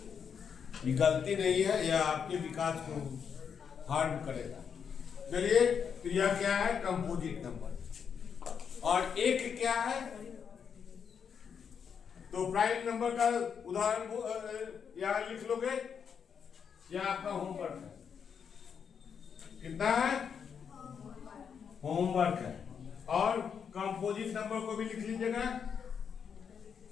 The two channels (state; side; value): quieter; right; 7.0 dB